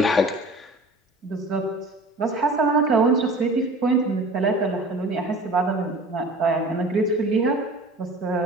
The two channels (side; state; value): both; normal; correlation 0.42